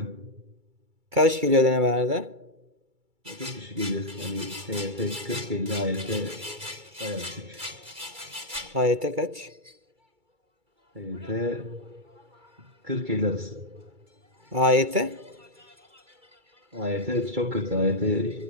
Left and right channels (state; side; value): late; left; 2.3 ms